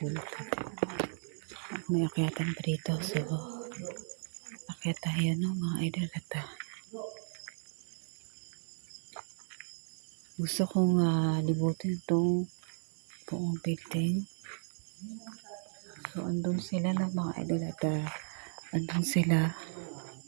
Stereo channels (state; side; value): silent; left; digital silence